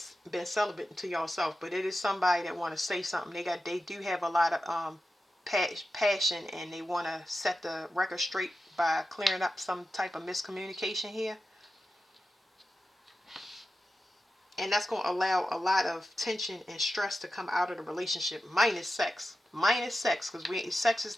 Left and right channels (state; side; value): normal; both; correlation 0.92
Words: celibate to yourself, but it is somebody that want to say something. They do have a lot of passion, and they want to set the record straight by clearing up some type of miscommunication here. And that's going to allow a lot of tension and stress to come out of the relationship, minus sex. Because sex is